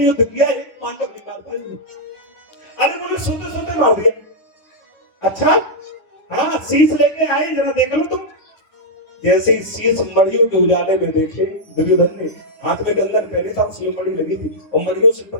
किया, एक पांडव नहीं मार पाई। अरे बोले सोते सोते मार दिया। अच्छा हाँ शीश लेके आए, जरा देख लो तुम। जैसे ही शीश मड़ियों के उजाले में देखे दुर्योधन ने, हाथ में गंदन पहने था, उसमें मड़ी लगी थी और मड़ियों से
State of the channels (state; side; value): late; right; 10 ms